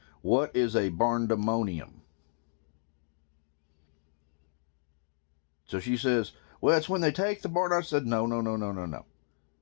what is a barndamonium? So she says, well, it's when they take the barn. I said, no.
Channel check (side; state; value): right; silent; digital silence